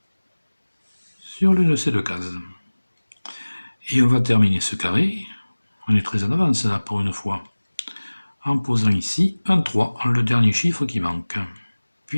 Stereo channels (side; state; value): both; inverted; correlation -1.00